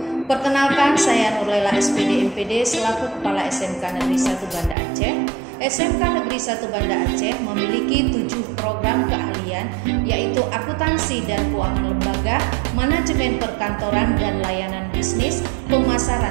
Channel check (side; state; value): left; drops out; at 4.8 s